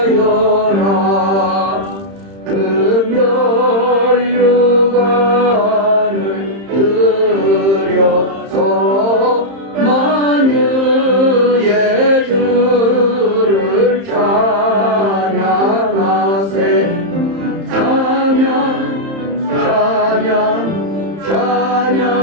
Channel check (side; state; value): left; late; 30 ms